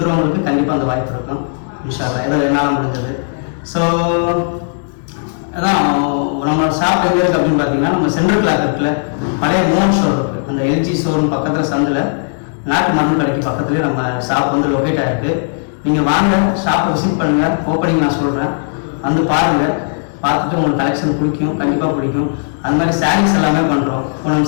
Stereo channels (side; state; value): right; silent; digital silence